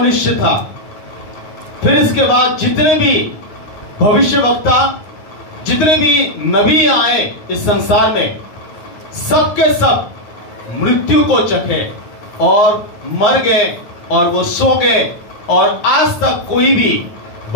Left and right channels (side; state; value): right; late; 9.6 ms